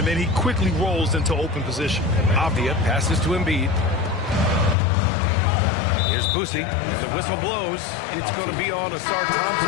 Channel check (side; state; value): right; drops out; at 4.8 s